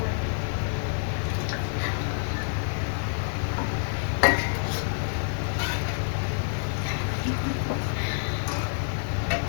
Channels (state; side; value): silent; right; 60 dB below the other